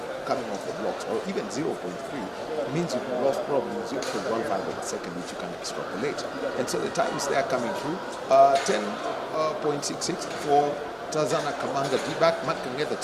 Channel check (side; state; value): both; identical; correlation 1.00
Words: coming off the blocks, or even 0.3, it means you've lost probably 0.15 of a second, which you can extrapolate. And so the times they are coming through, 10.66 for Tazana Kamanga D-back, Matt Kangeta